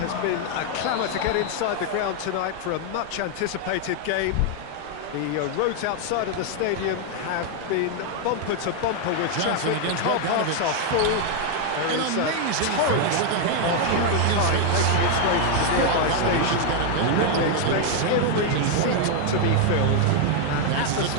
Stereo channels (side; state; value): both; different; correlation 0.00